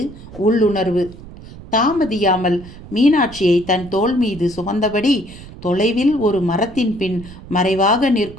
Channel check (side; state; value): right; noise; rumble, 16 dB below the sound